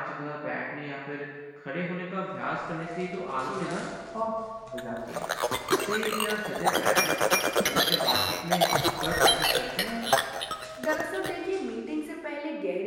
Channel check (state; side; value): identical; both; correlation 1.00